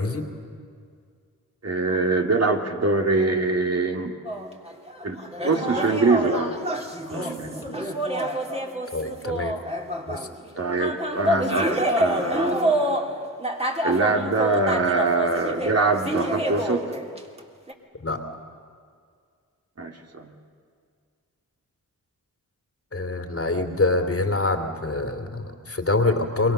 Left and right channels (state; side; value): normal; both; correlation 0.17